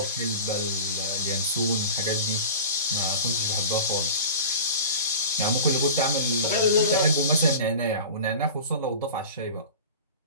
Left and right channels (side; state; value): both; inverted; correlation -0.36